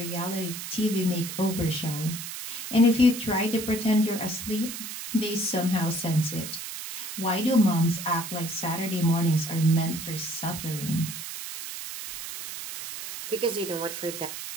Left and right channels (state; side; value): noise; right; hiss, 8 dB below the sound